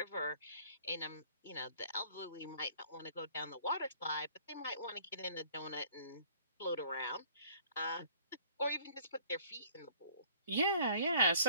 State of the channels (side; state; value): both; inverted; correlation -0.55